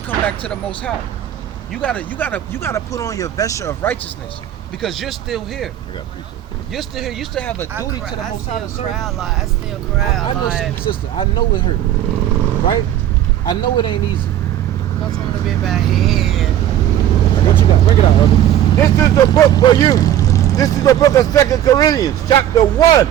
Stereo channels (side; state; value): left; quieter; 11.6 dB